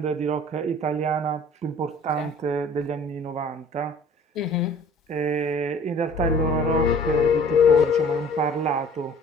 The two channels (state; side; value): normal; both; correlation 0.50